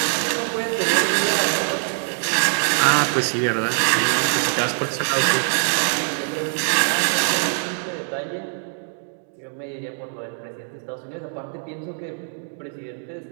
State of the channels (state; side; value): silent; left; digital silence